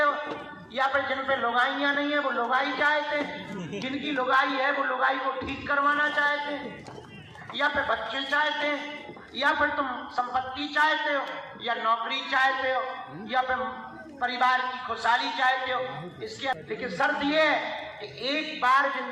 या फिर जिन पे लुगाइयां नहीं है वो लुगाई चाहते हैं, जिनकी लुगाई है वो लुगाई को ठीक करवाना चाहते हैं, या फिर बच्चे चाहते हैं, या फिर तुम संपत्ति चाहते हो, या नौकरी चाहते हो, या फिर परिवार की खुशहाली चाहते हो। इसके लेकिन शर्त ये है कि एक बार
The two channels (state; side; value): identical; both; correlation 1.00